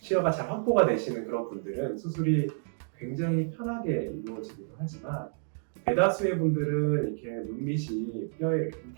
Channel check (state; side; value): silent; left; digital silence